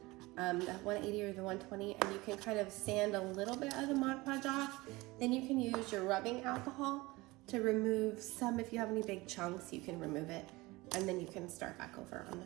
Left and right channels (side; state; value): left; quieter; 21.5 dB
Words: the 180 or the 120, and you can kind of sand a little bit of the Mod Podge off. Then you can use your rubbing alcohol to remove some. If you have any big chunks, you can remove it, and then you can start back over on